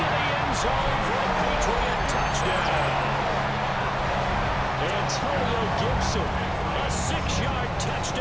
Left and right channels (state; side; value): identical; both; correlation 1.00